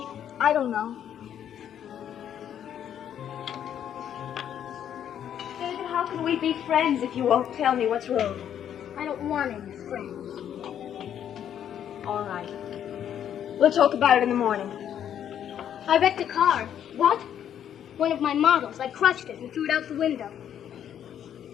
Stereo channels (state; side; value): quieter; right; 9.7 dB